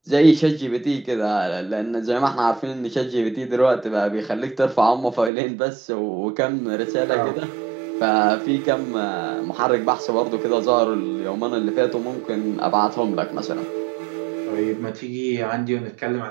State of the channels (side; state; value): left; drops out; at 5.3 s